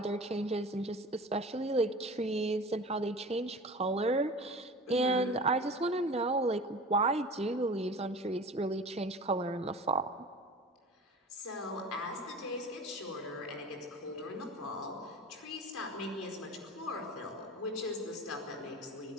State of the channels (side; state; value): both; normal; correlation 0.37